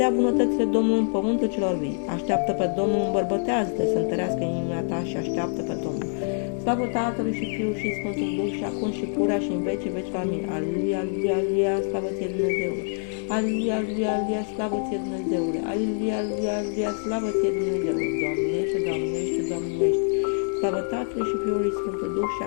bunătățile Domnului în pământul celor vii. Așteaptă pe Domnul, îmbărbătează-te, să întărească inima ta și așteaptă pe Domnul. Slavă Tatălui și Fiul și Sfântul Duh și acum și purea și în vecii veci. Amin. Aleluia, aleluia, aleluia, slavă ție Dumnezeule. Aleluia, aleluia, aleluia, slavă ție Dumnezeule. Aleluia, aleluia, aleluia, slavă ție Dumnezeule. Doamnește, Doamnește, Doamnește. Slavă Tatălui și Fiului și Sfântul Duh și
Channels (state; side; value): silent; right; 60 dB below the other